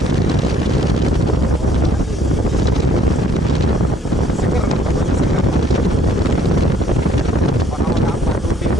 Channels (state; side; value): normal; both; correlation 0.63